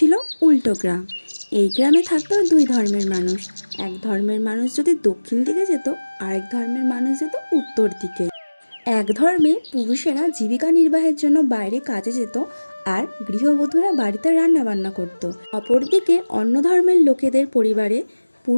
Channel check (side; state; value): both; inverted; correlation -1.00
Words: উল্টো গ্রাম। এই গ্রামে থাকতো দুই ধর্মের মানুষ। এক ধর্মের মানুষ যদি দক্ষিণ দিকে যেত, আরেক ধর্মের মানুষ যেত উত্তর দিকে। এক ধর্মে পুরুষেরা জীবিকা নির্বাহের জন্য বাইরে কাজে যেত, আর গৃহবধূরা বাড়িতে রান্না বান্না করত। অপরদিকে অন্য ধর্মের লোকেদের পরিবারে